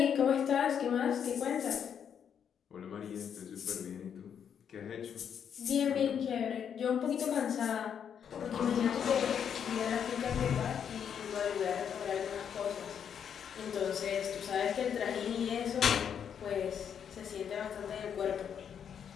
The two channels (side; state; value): right; quieter; 8.1 dB